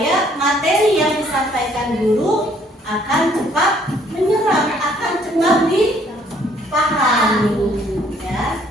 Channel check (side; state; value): both; normal; correlation 0.63